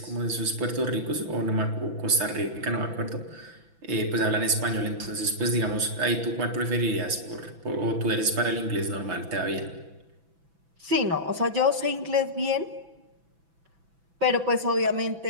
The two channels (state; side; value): late; left; 6.0 ms